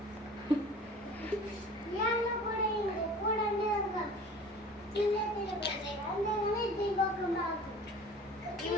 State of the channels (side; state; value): both; normal; correlation 0.43